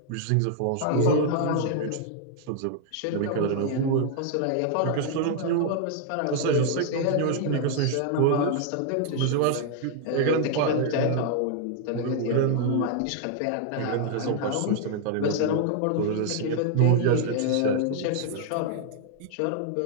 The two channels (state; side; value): different; both; correlation 0.00